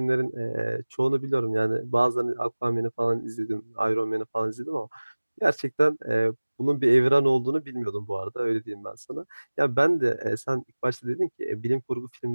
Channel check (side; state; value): both; inverted; correlation -1.00